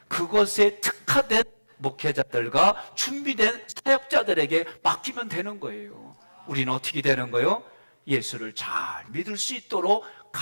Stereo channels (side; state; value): both; inverted; correlation -1.00